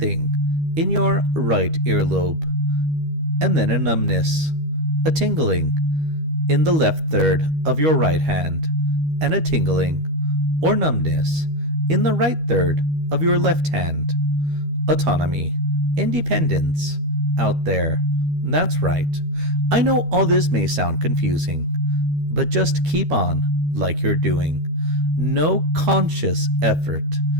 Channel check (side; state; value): left; late; 13 ms